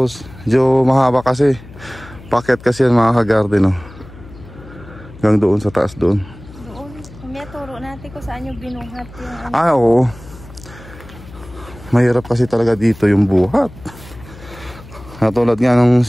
Medyo mahaba kasi. Paket kasi yan mga ka-garden, no? Hanggang doon sa taas doon. Doon. May turo natin kung saan yung binuhat yung ano. Oo. Mahirap kasi talaga dito yung buhat. Katulad nga nung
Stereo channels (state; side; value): noise; left; hum, 18 dB below the sound